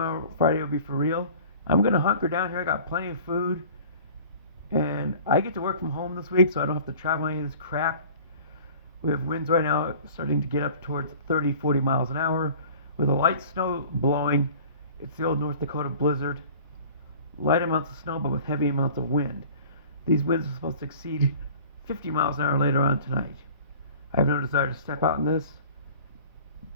Friday, will be for real. I'm going to hunker down here. I got plenty of food. And I get to work from home this week, so I don't have to travel any of this crap. We have winds right now starting to get up towards 30, 40 miles an hour. With a light snow blowing, it's the old North Dakota blizzard. Light amounts of snow, but with heavy amounts of wind. These winds are supposed to exceed 50 miles an hour later on tonight. I have no desire to step out in this,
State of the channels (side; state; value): both; inverted; correlation -0.45